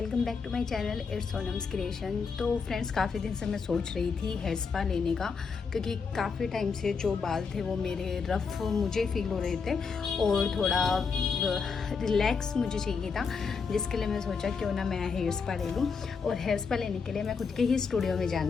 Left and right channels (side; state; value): right; quieter; 5.3 dB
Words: back to my channel it's Sonam's creation. तो friends, काफ़ी दिन से मैं सोच रही थी हेयर स्पा लेने का, क्योंकि काफ़ी टाइम से जो बाल थे वो मेरे रफ़ मुझे फील हो रहे थे और थोड़ा रिलैक्स मुझे चाहिए था, जिसके लिए मैं सोचा क्यों ना मैं हेयर स्पा ले लूँ। और हेयर स्पा लेने के लिए मैं खुद के ही स्टूडियो में